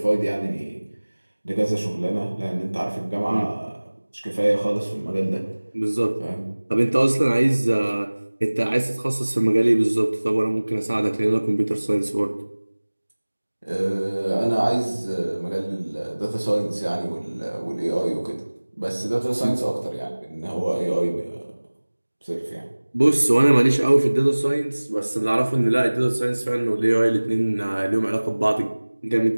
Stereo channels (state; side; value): inverted; both; correlation -1.00